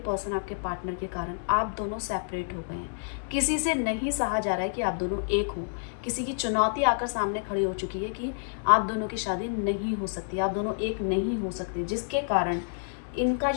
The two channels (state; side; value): silent; right; digital silence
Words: आपके पार्टनर के कारण आप दोनों सेपरेट हो गए हैं। किसी से नहीं सहा जा रहा है कि आप दोनों एक हो। किसी की चुनौती आकर सामने खड़ी हो चुकी है कि आप दोनों की शादी नहीं हो सकती, आप दोनों एक नहीं हो सकते, जिसके कारण इनका